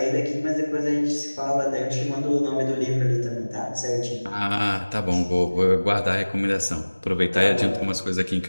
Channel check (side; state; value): both; inverted; correlation -1.00